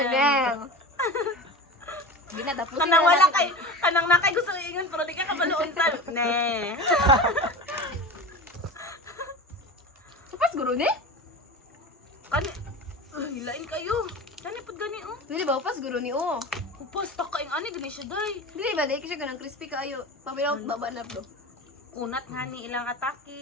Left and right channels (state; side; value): normal; both; correlation 0.31